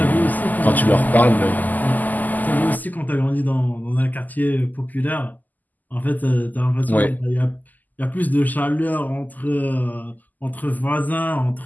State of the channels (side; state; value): right; late; 0.083 ms